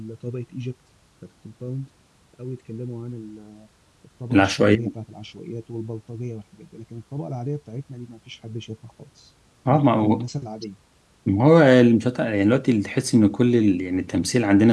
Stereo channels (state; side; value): identical; both; correlation 1.00